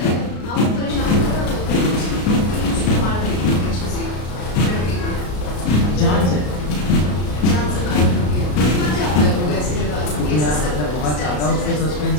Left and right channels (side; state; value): right; late; 33 ms